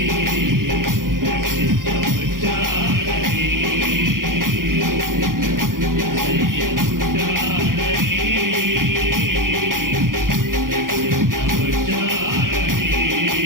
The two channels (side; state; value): left; late; 0.90 ms